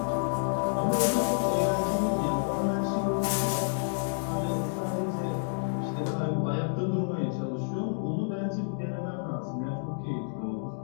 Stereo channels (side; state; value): right; silent; digital silence